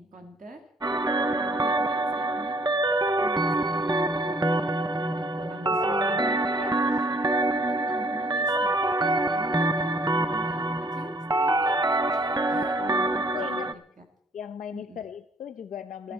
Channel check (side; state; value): both; normal; correlation 0.60